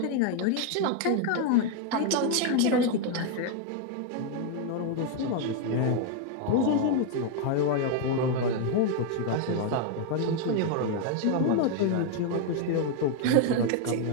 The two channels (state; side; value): different; both; correlation 0.01